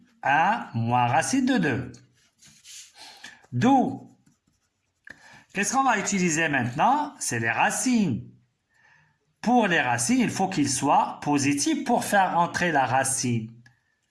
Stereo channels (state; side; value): identical; both; correlation 1.00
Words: à moins racine de 2. D'où Qu'est-ce qu'on va utiliser maintenant? C'est les racines. Pour les racines, il faut qu'ils soient positifs pour faire entrer la racine.